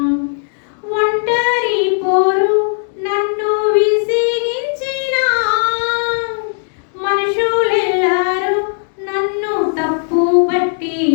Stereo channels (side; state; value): right; silent; digital silence